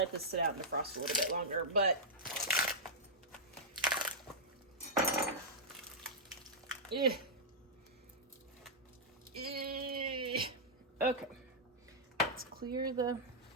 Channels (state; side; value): normal; both; correlation -0.09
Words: this sit out and defrost a little bit longer, but okay. Let's clear the...